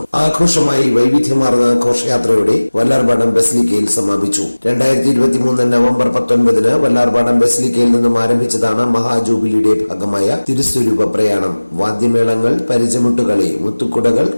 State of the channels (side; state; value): both; inverted; correlation -1.00